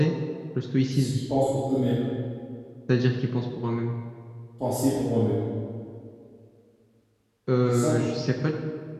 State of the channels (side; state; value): both; identical; correlation 1.00